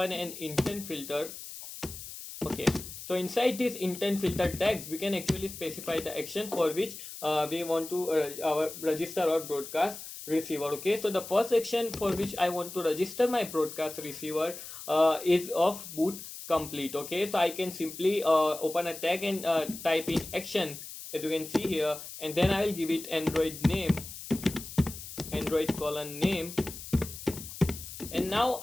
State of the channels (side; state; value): left; noise; hiss, 11 dB below the sound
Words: an intent filter. Okay, so inside this intent filter tags we can actually specify the action for which we want to register our broadcast receiver. Okay, so the first action for which I want to register my broadcast receiver is of boot complete. Okay, so I can simply open a tag and type in action, as you can see here, and then I will give it Android name, Android colon name, and now